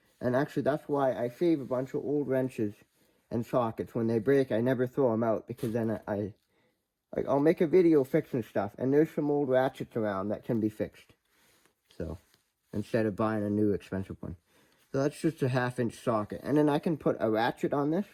And actually that's why I save a bunch of old wrenches and sockets. When they break, I never throw them out, because then I'll make a video fixing stuff, and there's some old ratchets around that can be fixed. So, instead of buying a new expensive one. So that's just a 1/2-inch socket. And then I can put a ratchet on this,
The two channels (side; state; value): both; identical; correlation 1.00